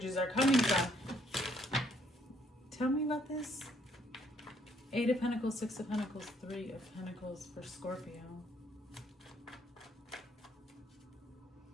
are coming from. Tell me about this. 8 of Pentacles, 6 of Pentacles, 3 of Pentacles for Scorpio.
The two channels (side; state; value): both; normal; correlation 0.67